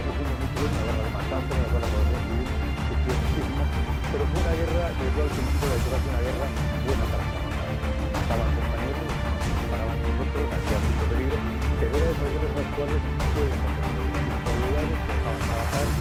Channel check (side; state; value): both; identical; correlation 1.00